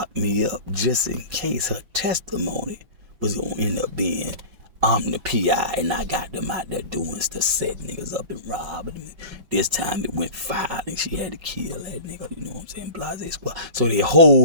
me up just in case her testimony was going to end up being, I'm the PI and I got them out there doing stuff, set niggas up and robbing them. This time it went violent. She had to kill that nigga, you know what I'm saying? Blase squad. So they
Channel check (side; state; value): left; late; 5.4 ms